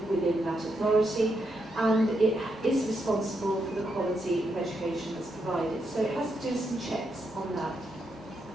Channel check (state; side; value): normal; both; correlation 0.81